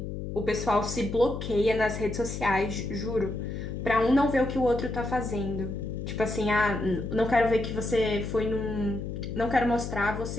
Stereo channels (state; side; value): noise; left; hum, 6 dB below the sound